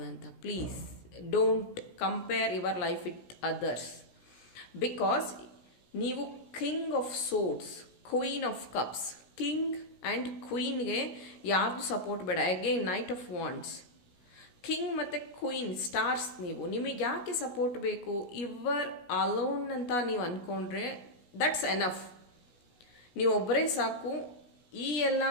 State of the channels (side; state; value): right; late; 16 ms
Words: Please don't compare your life with others. Because ನೀವು king of swords, queen of cups, king and ಕ್ವೀನ್ಗೆ ಯಾರ್ದು ಸಪೋರ್ಟ್ ಬೇಡ. Again knight of wands, king ಮತ್ತು ಕ್ವೀನ್ ಸ್ಟಾರ್ಸ್. ನಿಮಗೆ ಯಾಕೆ ಸಪೋರ್ಟ್ ಬೇಕು? ಯುವರ್ ಅಲೋನ್ ಅಂತ ನೀವು ಅಂದ್ಕೊಂಡ್ರೆ ದಟ್ಸ್ ಎನಫ್. ನೀವು ಒಬ್ಬರೇ ಸಾಕು ಈ ಎಲ್ಲ